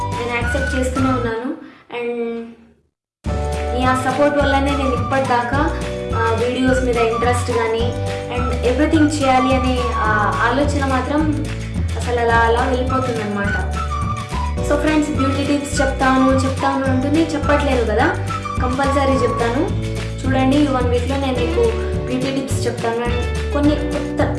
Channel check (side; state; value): both; identical; correlation 1.00